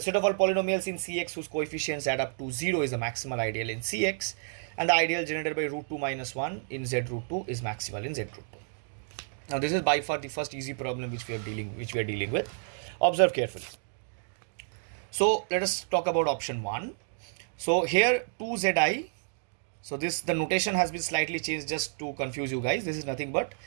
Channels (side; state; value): left; silent; digital silence